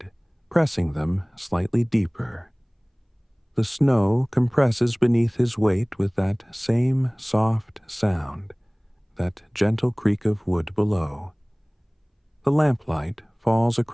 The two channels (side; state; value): both; identical; correlation 1.00